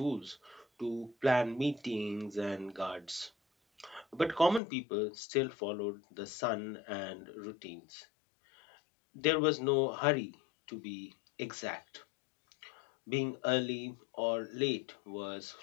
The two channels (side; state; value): right; drops out; at 4.6 s